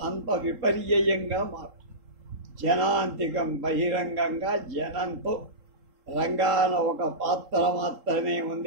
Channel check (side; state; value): left; late; 3.8 ms